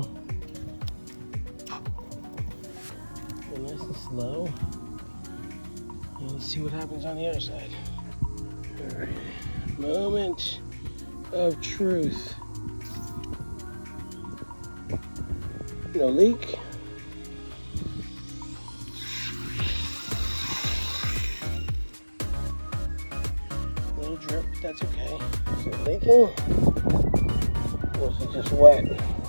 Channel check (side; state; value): both; inverted; correlation -1.00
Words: Go nice and slow. And let's see what happens on the other side. All right, moment of truth. No leak. Little drip, but that's okay. Is it leaking? Or is it just wet?